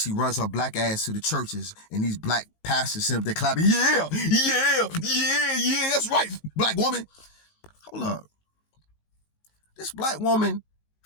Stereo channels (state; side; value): late; right; 19 ms